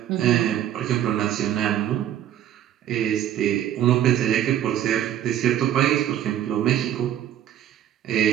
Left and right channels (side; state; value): left; quieter; 11.2 dB